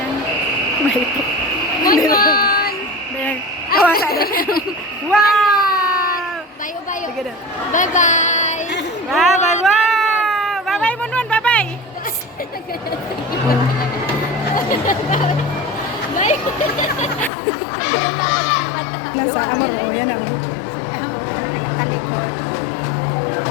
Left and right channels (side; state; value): right; drops out; at 17.3 s